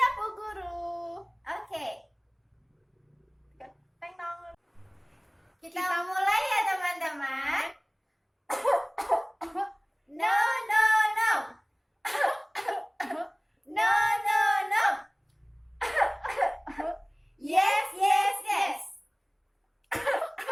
Bu Guru. Oke, Teng dong. kita mulai ya teman-teman. No, no, no. No, no, no. Yes, yes, yes.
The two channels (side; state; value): both; identical; correlation 1.00